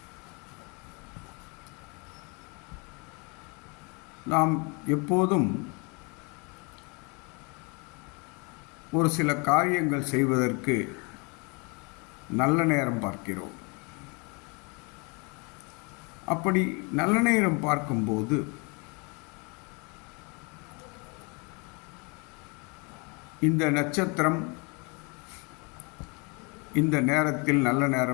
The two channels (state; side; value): quieter; right; 31.5 dB